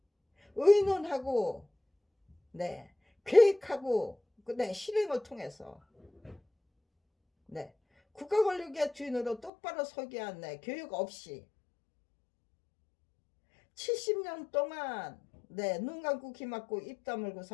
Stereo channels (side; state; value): right; drops out; at 9.5 s